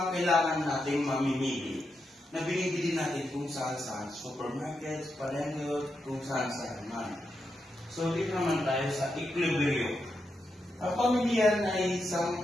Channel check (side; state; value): both; normal; correlation 0.85